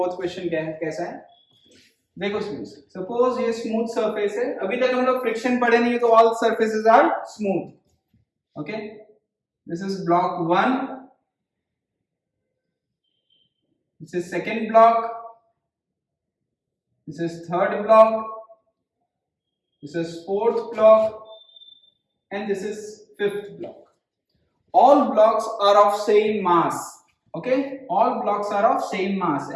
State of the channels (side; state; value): both; identical; correlation 1.00